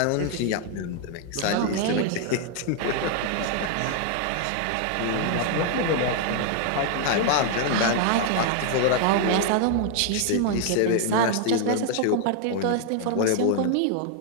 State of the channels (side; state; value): both; different; correlation 0.00